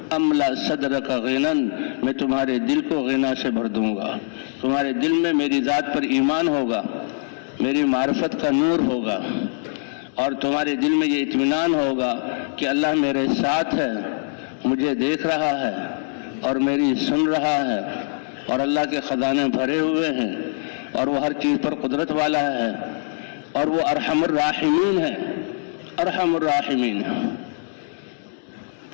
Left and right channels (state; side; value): silent; right; 62 dB below the other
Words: املا صدرک غنن، میں تمہارے دل کو غنا سے بھر دوں گا. تمہارے دل میں میری ذات پر ایمان ہوگا، میری معرفت کا نور ہوگا، اور تمہارے دل میں یہ اطمینان ہوگا کہ اللہ میرے ساتھ ہے، مجھے دیکھ رہا ہے اور میری سن رہا ہے، اور اللہ کے خزانے بھرے ہوئے ہیں، اور وہ ہر چیز پر قدرت والا ہے، اور وہ ارحم الراحمین ہے، ارحم الراحمین ہے.